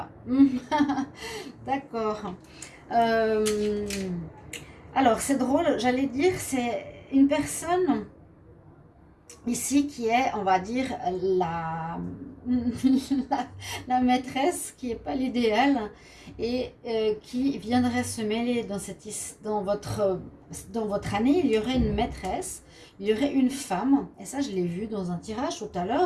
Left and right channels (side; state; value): both; identical; correlation 1.00